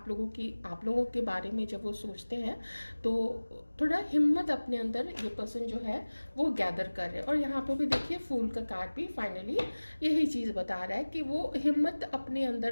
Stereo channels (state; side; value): inverted; both; correlation -1.00